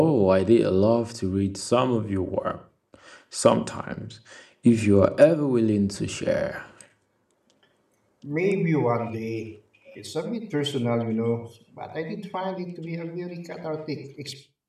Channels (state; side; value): identical; both; correlation 1.00